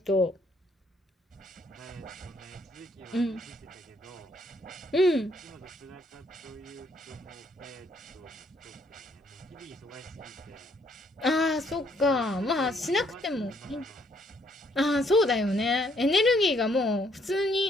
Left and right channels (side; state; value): both; normal; correlation 0.69